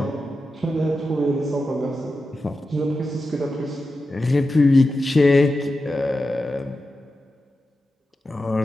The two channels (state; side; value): normal; both; correlation 0.91